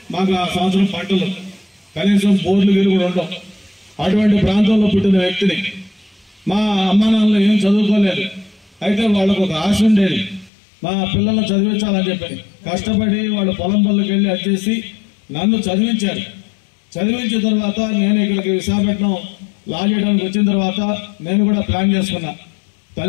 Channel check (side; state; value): right; drops out; at 10.5 s